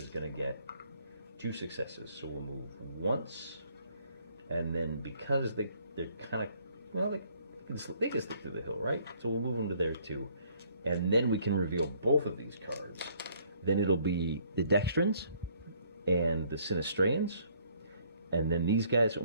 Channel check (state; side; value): inverted; both; correlation -0.63